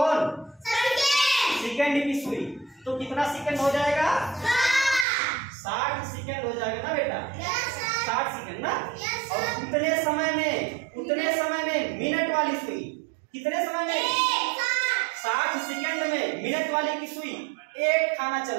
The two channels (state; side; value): drops out; left; at 5.1 s